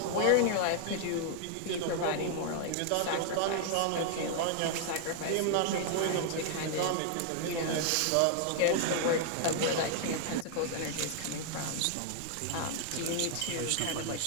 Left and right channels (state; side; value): different; both; correlation 0.00